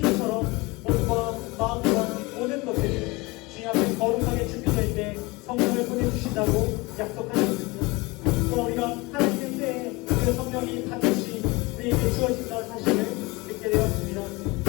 몸과 마음과 모든 것들이 주님 앞에 거룩하게 준비될 때 성령을 보내주신다고 약속하셨습니다. 또 우리가 하나님의 때에 그 성령이 반드시 우리에게 주어진다는 사실을 듣게 되었습니다.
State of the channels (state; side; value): quieter; right; 23.9 dB